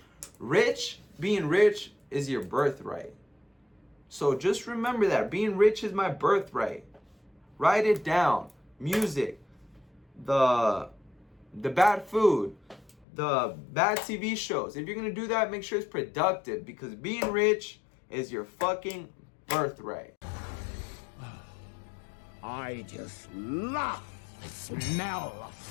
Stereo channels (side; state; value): right; drops out; at 13.1 s